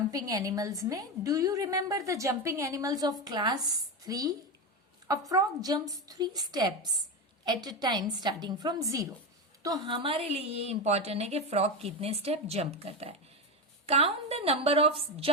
एनिमल्स में do you remember the jumping animals of class 3? A frog jumps 3 steps at a time starting from 0। तो हमारे लिए ये इंपॉर्टेंट है कि फ्रॉग कितने स्टेप जंप करता है। Count the number of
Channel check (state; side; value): normal; both; correlation 0.16